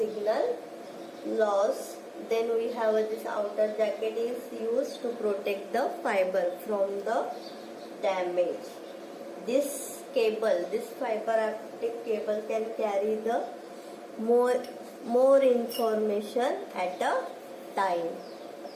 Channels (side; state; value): both; identical; correlation 1.00